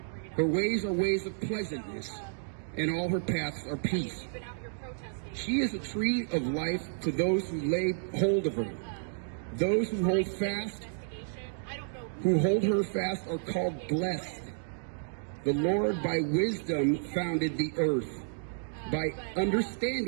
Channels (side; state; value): left; silent; digital silence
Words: Her ways are ways of pleasantness, and all her paths are peace. She is a tree of life to those who lay hold of her. Those who hold her fast are called blessed. The Lord by wisdom founded the earth. By